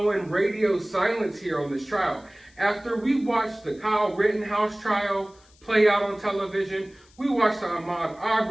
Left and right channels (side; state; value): left; noise; hiss, 30 dB below the sound